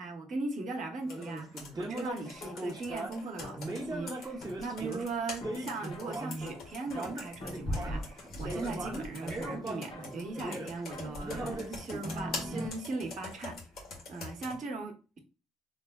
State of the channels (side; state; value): both; normal; correlation 0.72